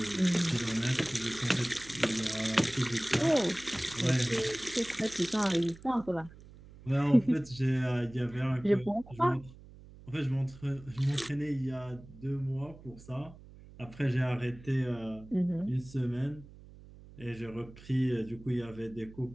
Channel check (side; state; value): right; noise; hum, 20 dB below the sound